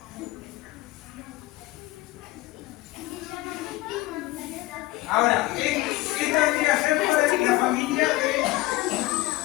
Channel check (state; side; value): quieter; right; 18.9 dB